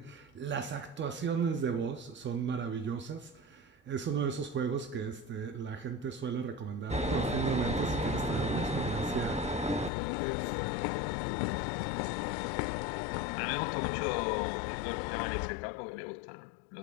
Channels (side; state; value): right; drops out; at 9.9 s